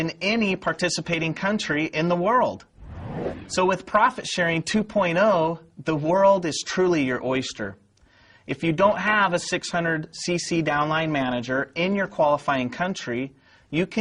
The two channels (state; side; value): identical; both; correlation 1.00